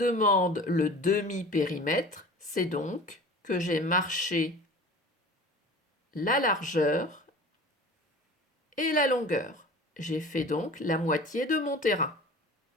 le demi-périmètre, c'est donc que j'ai marché la largeur et la longueur. J'ai fait donc la moitié de mon terrain.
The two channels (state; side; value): normal; both; correlation 0.40